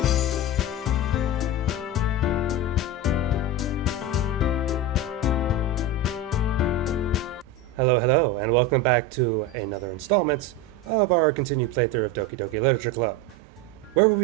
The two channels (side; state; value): both; normal; correlation 0.21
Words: Hello, hello, and welcome back to another installment of our continued playthrough of Doki Doki Literature Club. Where will